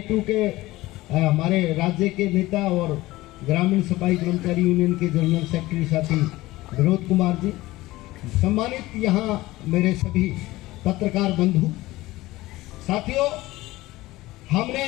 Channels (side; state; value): right; quieter; 18.4 dB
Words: के हमारे राज्य के नेता और ग्रामीण सफाई कर्मचारी यूनियन के जनरल सेक्रेटरी साथी विनोद कुमार जी, सम्मानित यहाँ मेरे सभी पत्रकार बंधु साथियों। हमने